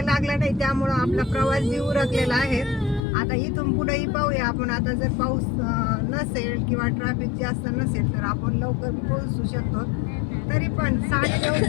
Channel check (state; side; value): drops out; right; at 3.0 s